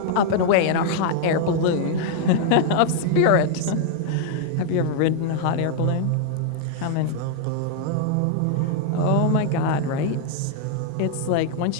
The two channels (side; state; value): both; different; correlation -0.01